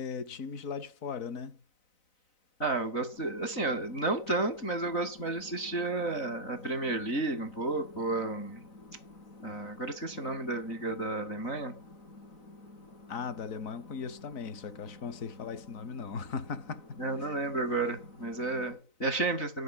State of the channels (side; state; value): right; late; 4.0 ms